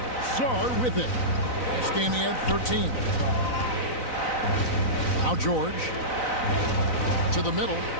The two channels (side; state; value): right; late; 4.0 ms